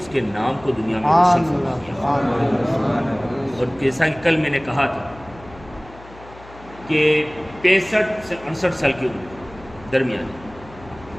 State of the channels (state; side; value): noise; left; hum, 21 dB below the sound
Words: کے نام کو دنیا میں روشن فرمائے. اور جیسا کہ کل میں نے کہا تھا کہ 65 سے 68 سال کی عمر درمیان